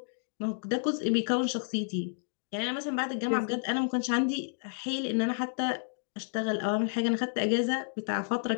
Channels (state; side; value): silent; right; digital silence